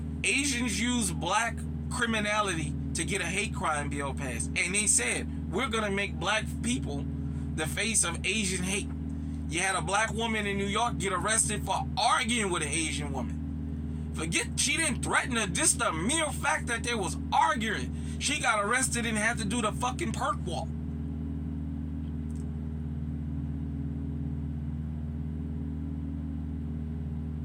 Asians use black criminality to get a hate crime bill passed. And they said, we're going to make black people the face of Asian hate. You had a black woman in New York get arrested for arguing with an Asian woman. Forget she didn't threaten her, just the mere fact that they was arguing. She got arrested and had to do the fucking perk walk.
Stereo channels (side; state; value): both; identical; correlation 1.00